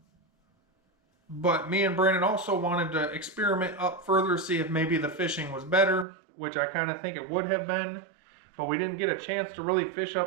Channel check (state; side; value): drops out; left; at 6.1 s